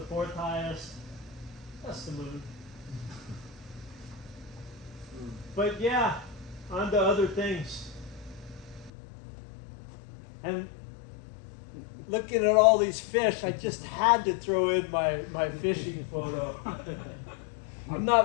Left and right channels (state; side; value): drops out; right; at 8.9 s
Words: highest. That's the moon. But yeah, on to other things. And looking at all these fish, I just had to throw in my fishing photo. I'm